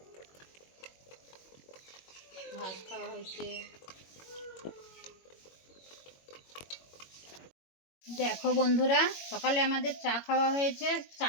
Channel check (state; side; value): late; right; 21 ms